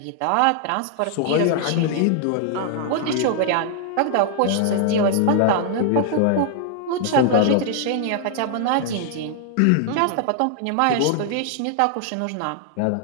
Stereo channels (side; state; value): both; different; correlation 0.00